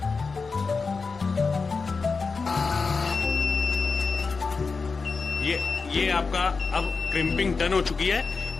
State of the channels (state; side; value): quieter; right; 4.5 dB